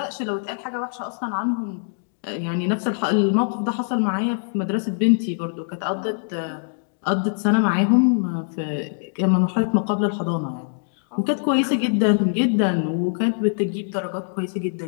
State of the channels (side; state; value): right; silent; digital silence